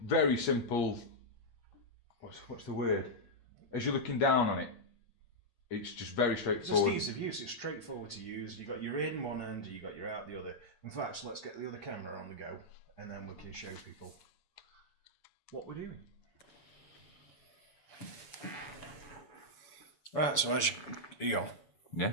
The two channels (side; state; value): right; late; 7.0 ms